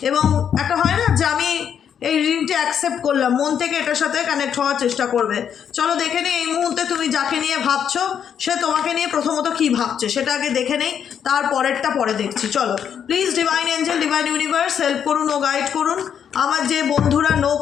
এবং একটা হয় না যে আমি এই রিডিংটি অ্যাকসেপ্ট করলাম, মন থেকে এটার সাথে কানেক্ট হওয়ার চেষ্টা করবে। চলো দেখে নিই এই মুহূর্তে তুমি যাকে নিয়ে ভাবছো সে তোমাকে নিয়ে প্রথমত কি ভাবছে সেটা আগে দেখে নেই, তারপরেরটা পরে দেখছি। চলো please divine Angel, divine universe help করুন ও গাইড করুন আমার যে বন্ধুরা নো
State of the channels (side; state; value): right; quieter; 8.3 dB